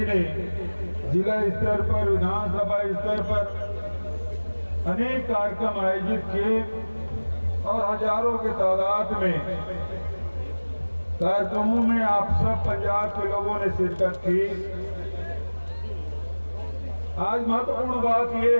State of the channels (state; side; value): inverted; both; correlation -1.00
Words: ने जिला स्तर पर, विधानसभा स्तर पर अनेक कार्यक्रम आयोजित किए और हजारों की तादाद में कार्यक्रमों में आप सब पंजाब के लोगों ने शिरकत की। आज महत्वपूर्ण बात